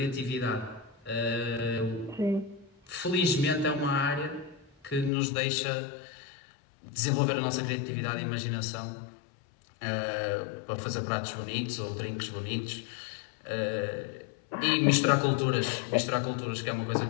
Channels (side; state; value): right; drops out; at 5.1 s